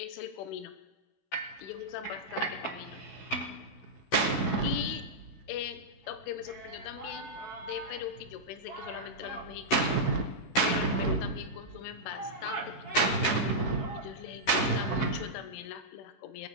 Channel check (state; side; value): late; right; 16 ms